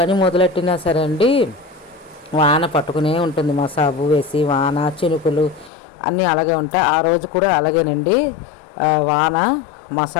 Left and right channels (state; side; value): drops out; right; at 5.7 s